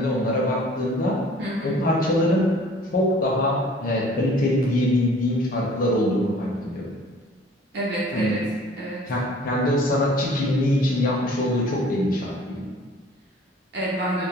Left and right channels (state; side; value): normal; both; correlation 0.51